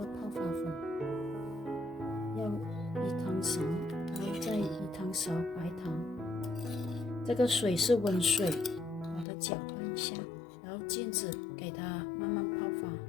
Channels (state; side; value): drops out; right; at 9.2 s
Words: 发粉，要1汤勺，然后再1汤勺白糖。这个水是温水，把它搅拌一下，然后静止给它慢慢泡